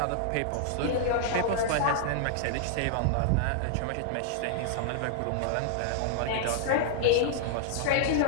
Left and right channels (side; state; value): both; different; correlation -0.01